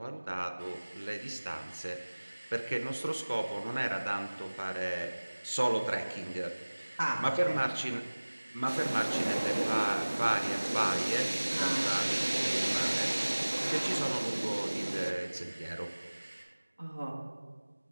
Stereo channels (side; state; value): both; inverted; correlation -1.00